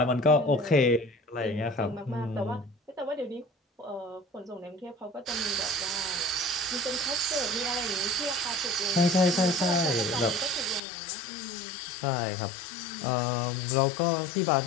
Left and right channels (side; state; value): right; drops out; at 10.8 s